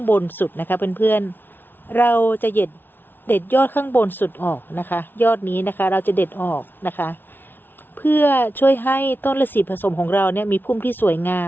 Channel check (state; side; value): late; right; 0.098 ms